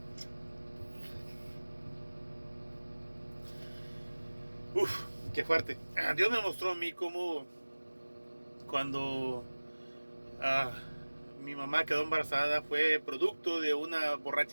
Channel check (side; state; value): both; inverted; correlation -1.00